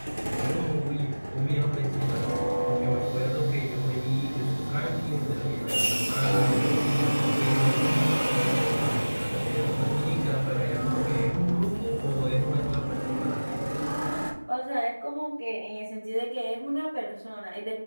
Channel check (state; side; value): inverted; both; correlation -1.00